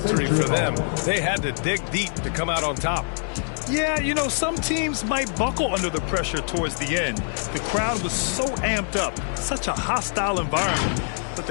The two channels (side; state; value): right; silent; digital silence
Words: for them. They had to dig deep to come out on top. Yeah, you know, some teams might buckle under the pressure towards the end. The crowd was so amped up, such a hostile environment. But